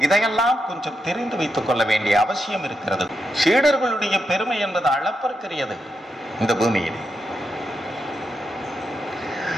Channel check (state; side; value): normal; both; correlation 0.85